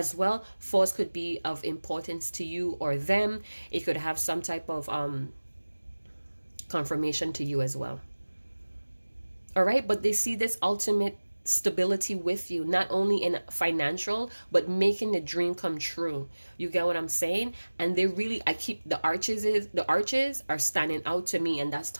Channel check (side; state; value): both; inverted; correlation -1.00